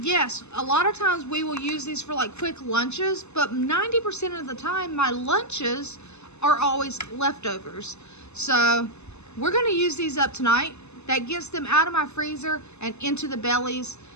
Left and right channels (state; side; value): late; right; 0.81 ms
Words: yes, a lot of times we will use these for like quick lunches, but 90% of the time my lunches are always leftovers. So, we're going to use these up tonight. That gets them out of my freezer and into the bellies.